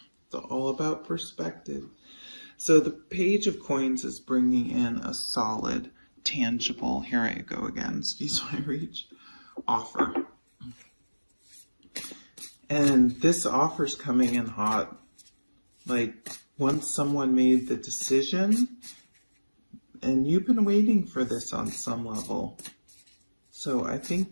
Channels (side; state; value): both; inverted; correlation -1.00